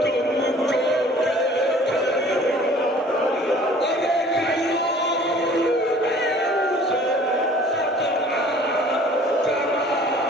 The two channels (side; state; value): both; normal; correlation 0.51